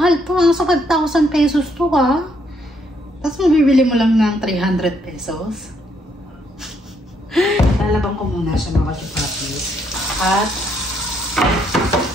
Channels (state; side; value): normal; both; correlation 0.72